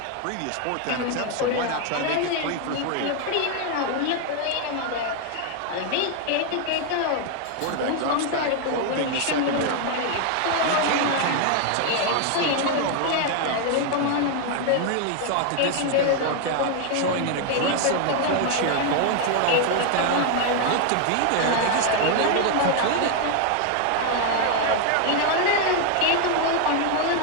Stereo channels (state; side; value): different; both; correlation 0.00